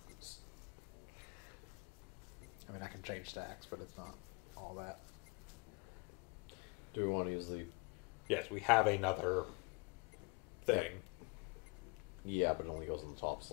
I mean, I can change stacks, but it's not all that. do we want to use the... Yes, we have another thing. Yeah, but it only goes in the top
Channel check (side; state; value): right; quieter; 29.5 dB